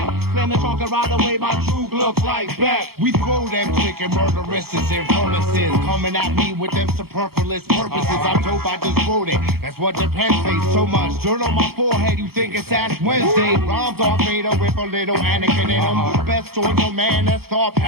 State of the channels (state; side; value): late; left; 0.95 ms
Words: Slam the trunk and ride away, my true looks like Beck. We throw them chicken murderesses and furnaces, coming at me with them superfluous purposes. I'm dope, I just wrote it. That's what the pen says. So much dirt on my forehead, you think it's Ash Wednesday. Rhymes are Vader with a little Anakin in them. Best on your man that start